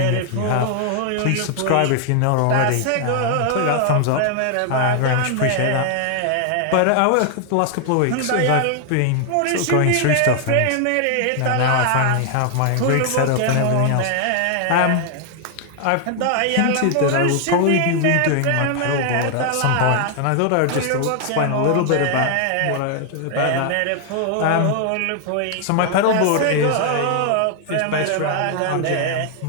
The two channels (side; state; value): both; different; correlation 0.00